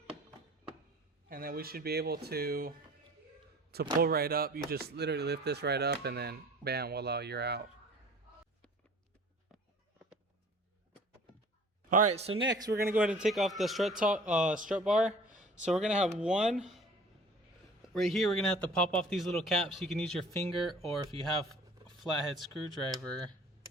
And then we should be able to pull right up. You just literally lift this right up, and then bam, voila, you're out. All right, so next we're gonna go ahead and take off the strut bar. So we're gonna have one right here. We're gonna have to pop off these little caps. You can use your finger, or if you have a flathead screwdriver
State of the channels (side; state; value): both; normal; correlation 0.47